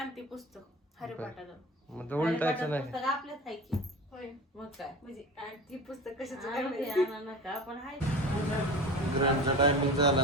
पुस्तक हरिपाठाचं. मग तर उलटायचं नाही. पुस्तक आपल्याच आहे की. होय मग काय म्हणजे ती पुस्तक कशाचं काय नका पण आहे. ग्रँडचा टायमिंग झाला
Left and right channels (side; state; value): both; normal; correlation 0.33